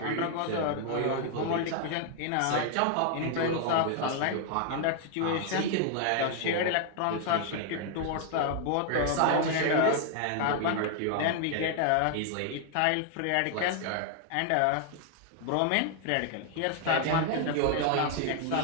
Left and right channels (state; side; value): different; both; correlation 0.00